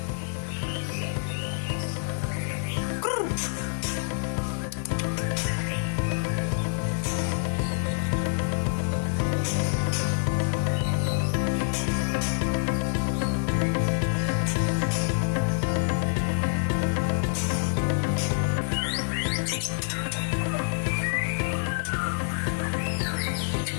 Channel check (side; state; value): right; silent; 60 dB below the other